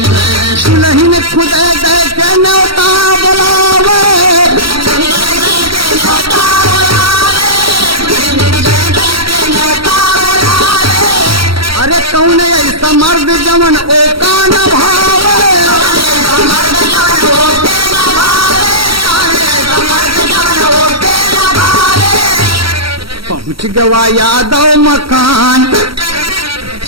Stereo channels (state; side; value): late; left; 0.75 ms